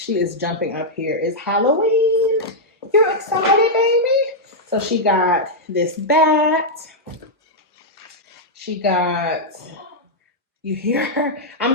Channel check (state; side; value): normal; both; correlation -0.06